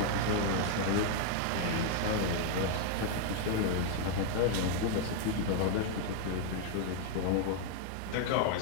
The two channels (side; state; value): both; different; correlation 0.00